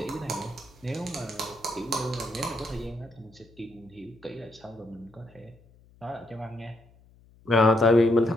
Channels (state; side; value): noise; left; hum, 27 dB below the sound